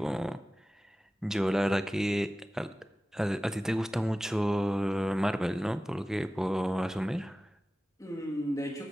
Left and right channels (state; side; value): normal; both; correlation 0.96